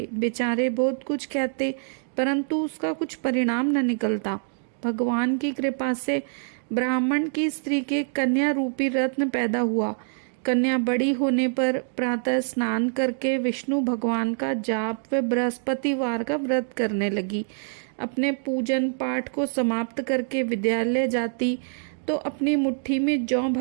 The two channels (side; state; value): left; silent; digital silence